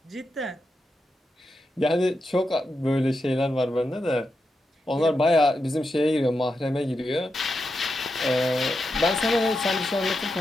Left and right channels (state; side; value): normal; both; correlation 0.87